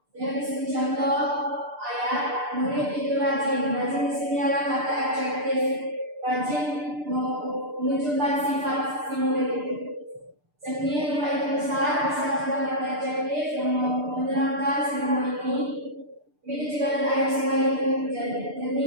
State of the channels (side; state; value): left; late; 6.8 ms